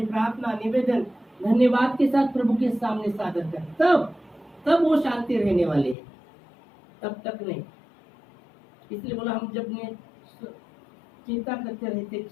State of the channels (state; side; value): drops out; right; at 6.0 s